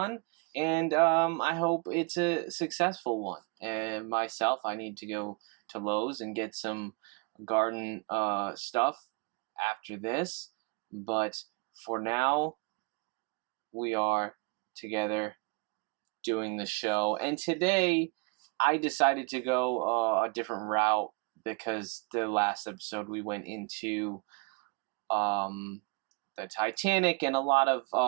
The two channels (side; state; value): left; quieter; 31.7 dB